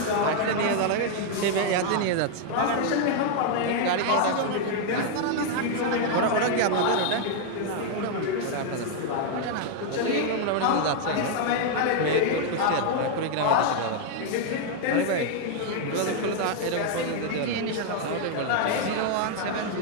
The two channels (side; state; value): both; different; correlation 0.00